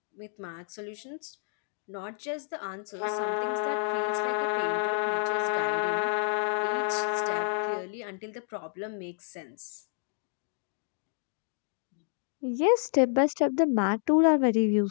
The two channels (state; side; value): silent; right; digital silence